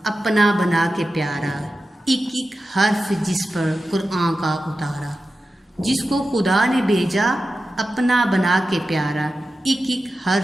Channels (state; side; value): normal; both; correlation 0.92